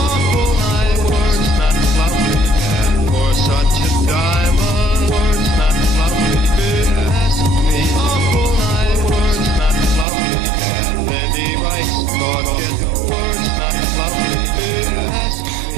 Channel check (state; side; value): drops out; left; at 10.1 s